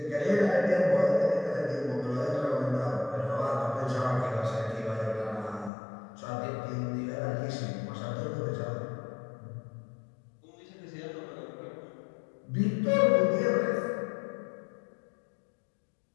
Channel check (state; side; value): drops out; right; at 5.7 s